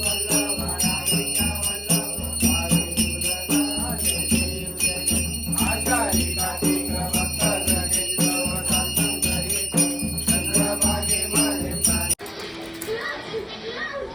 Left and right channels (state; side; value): identical; both; correlation 1.00